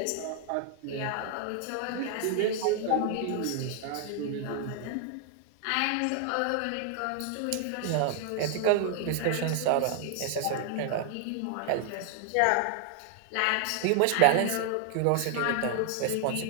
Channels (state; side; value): different; both; correlation 0.00